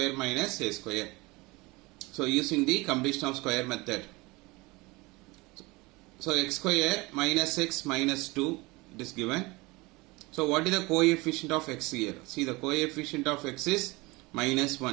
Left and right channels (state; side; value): quieter; left; 23.4 dB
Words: minus a square. So using the completion of square method. So x square minus x minus 2 it is given. So what is the coefficient of x here? See, the coefficient of x is minus